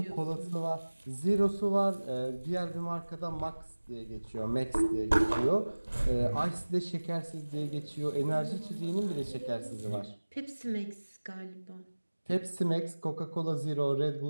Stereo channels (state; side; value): inverted; both; correlation -1.00